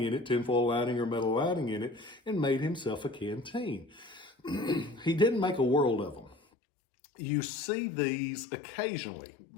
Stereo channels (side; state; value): right; drops out; at 6.4 s